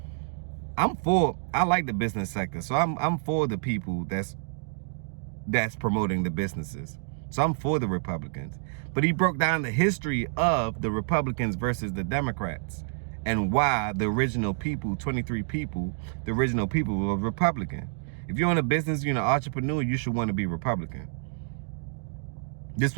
I like the business sector, so I'm for the people that's promoting the businesses. So I'm for the Republicans. But he broke down the history of the Republicans versus the Democrats and why the original people, 23 people, the original people were Republican. If you're in a business, you're an entrepreneur, you should want to be Republican. This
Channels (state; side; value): silent; left; digital silence